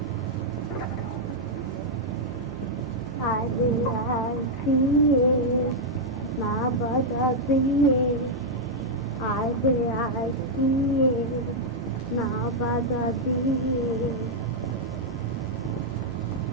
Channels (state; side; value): normal; both; correlation -0.04